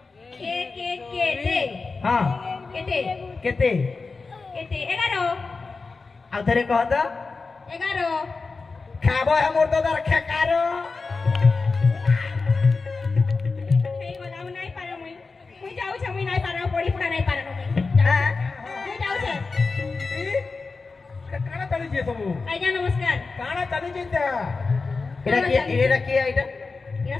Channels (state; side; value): quieter; right; 4.2 dB